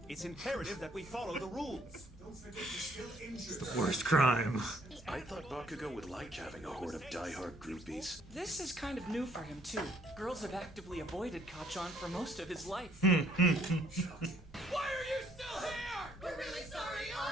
It's imperative that we follow the rules. Don't forget you're still injured. The worst crime. I thought Bakugo would like having a horde of diehard groupies. This is kind of new for him, too. Girls have actively avoided Kachan for most of his life. Why are you still here? We're really sorry,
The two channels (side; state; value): both; normal; correlation 0.64